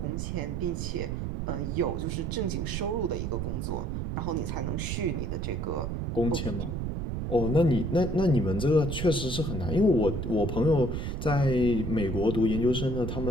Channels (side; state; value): right; noise; rumble, 3 dB below the sound